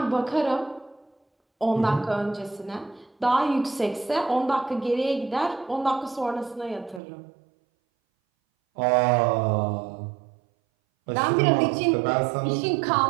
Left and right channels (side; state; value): left; drops out; at 7.0 s